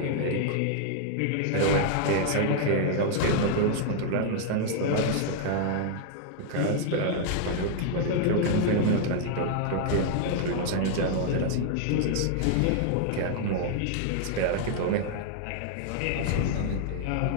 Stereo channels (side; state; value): both; different; correlation 0.00